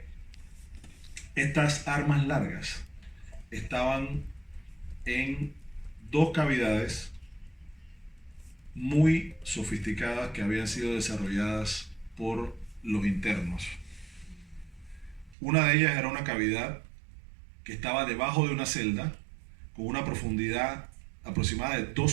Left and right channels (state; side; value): drops out; left; at 15.4 s